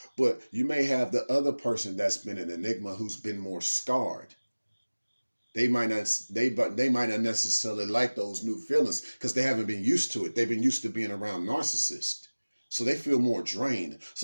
But you may have the other person that's been an enigma who's been more scarred. They might not necessarily like those new feelings because they haven't been used to it. They've been used to being around narcissists. So they feel more drained.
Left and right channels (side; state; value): both; inverted; correlation -1.00